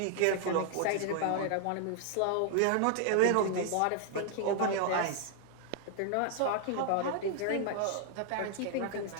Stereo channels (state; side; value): different; both; correlation 0.00